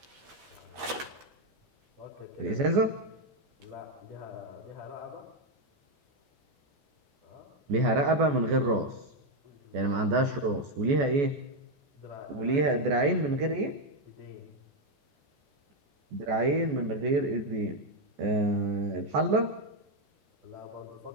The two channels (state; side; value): late; left; 14 ms